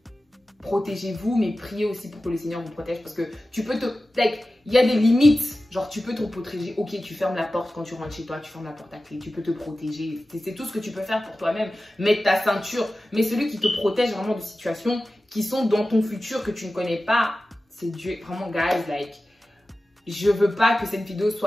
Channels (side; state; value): both; normal; correlation 0.95